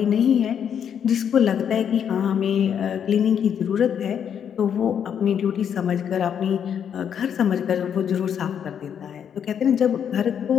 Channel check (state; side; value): quieter; right; 8.3 dB